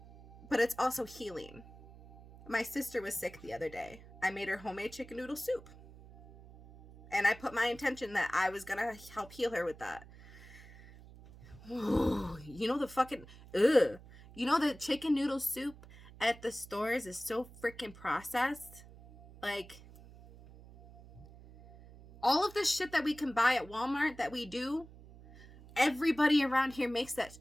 But it's also healing. My sister was sick the other day. I made her homemade chicken noodle soup. And I put my intention that I was going to help heal her with that. Ooh, the chicken noodle soup at the stores is so freaking processed. Like, all of the shit that we can buy at Walmart that we do, everybody around here makes that.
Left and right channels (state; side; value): noise; right; hum, 19 dB below the sound